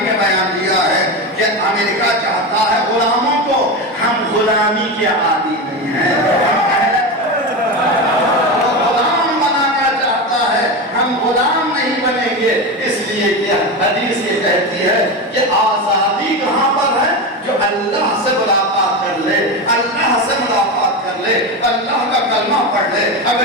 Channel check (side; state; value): both; normal; correlation 0.19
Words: بیان دیا ہے کہ امریکہ چاہتا ہے غلاموں کو، ہم غلامی کے عادی نہیں ہیں، غلام بنانا چاہتا ہے، ہم غلام نہیں بنیں گے۔ اس لیے کہ حدیث یہ کہتی ہے کہ آزادی کہاں پر ہے؟ جو اللہ سے ملاقات کر لے، اللہ سے ملاقات کر لے، اللہ کا کلمہ پڑھ لے،